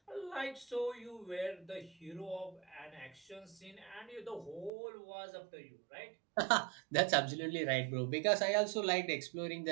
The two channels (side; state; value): left; drops out; at 4.7 s